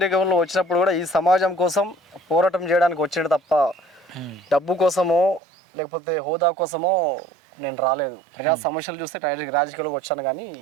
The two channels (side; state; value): left; drops out; at 5.4 s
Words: వచ్చినప్పుడు కూడా ఈ సమాజం కోసం పోరాటం చేయడానికి వచ్చాడు తప్ప డబ్బు కోసమో లేకపోతే హోదా కోసమో నేను రాలేదు. ప్రజా సమస్యలు చూస్తే రాజకీయాలకు వచ్చాను, కానీ